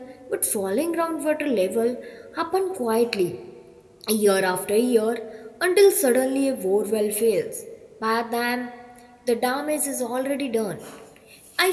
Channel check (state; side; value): identical; both; correlation 1.00